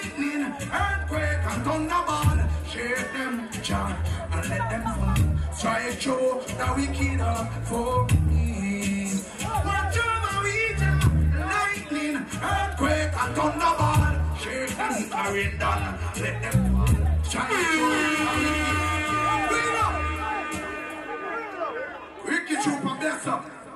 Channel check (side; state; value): both; identical; correlation 1.00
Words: earthquake. shake them, John, and let them fall. Strike through the wicked for me. Watch over we lightning, earthquake, and thunderball. Shake them, carrying down, let them fall. Strike through the wicked. Ricky Trooper, bless up.